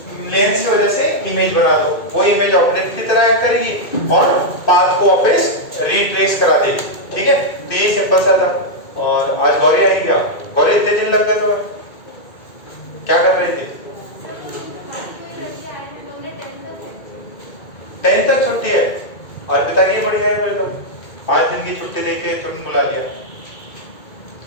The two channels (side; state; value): right; late; 2.2 ms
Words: लेंस की वजह से इमेज बना दो, वो इमेज ऑब्जेक्ट की तरह एक्ट करेगी और पाथ को वापस रिट्रेस करा देगी, ठीक है। तो ये सिंपल सा था। और आज गौरी आई गया, गौरी इतने दिन लग गए तो क्या कर रहे थे? 10 तक छुट्टी है और पिता की बढ़िया है, तो 5 दिन की छुट्टी देके तुरंत बुला लिया,